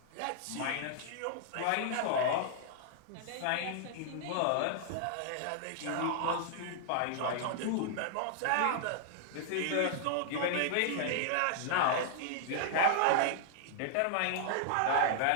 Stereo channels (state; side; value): different; both; correlation -0.01